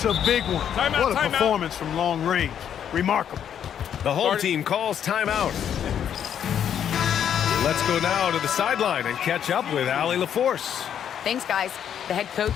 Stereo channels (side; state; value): right; quieter; 9.1 dB